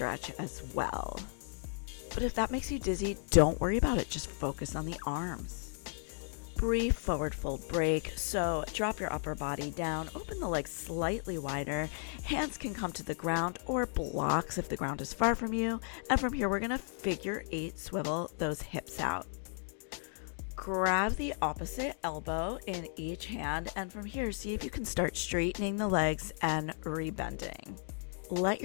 as well. But if that makes you dizzy, don't worry about it. Just focus on the arms. Brief forward fold break. So drop your upper body down, open the legs slightly wider. Hands can come to the ground or blocks if the ground is far from you. And from here, we're going to figure 8 swivel those hips out. Grab the opposite elbow in each hand, and from here, see if you can start straightening the legs and rebending. Let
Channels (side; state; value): right; silent; 55 dB below the other